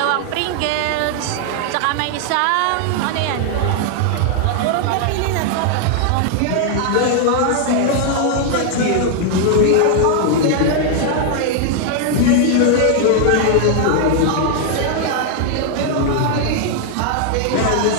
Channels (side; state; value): both; different; correlation 0.00